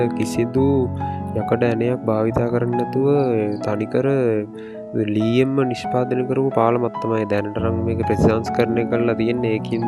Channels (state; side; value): identical; both; correlation 1.00